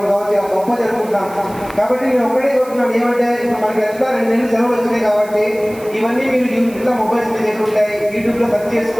కావచ్చు, ఇలా గొప్ప జరుపుకుంటాం. కాబట్టి నేను ఒకటే కోరుతున్నాను, ఏమంటే ఇప్పుడు మనకి ఎట్లా 2 నెలలు సెలవులు వచ్చినాయి కాబట్టి ఇవన్నీ మీరు ఇట్లా మొబైల్స్ మీద ఎట్లుంటాయి, యూట్యూబ్లో సెర్చ్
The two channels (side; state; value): right; noise; hiss, 21 dB below the sound